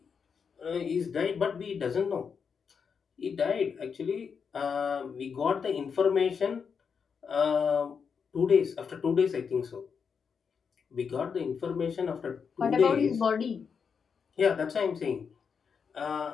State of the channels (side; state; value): right; quieter; 6.2 dB